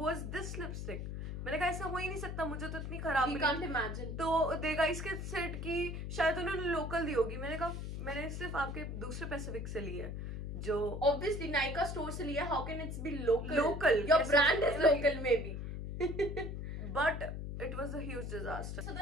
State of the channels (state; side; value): noise; left; hum, 5 dB below the sound